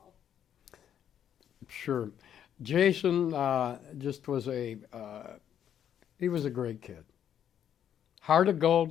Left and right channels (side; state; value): right; quieter; 9.6 dB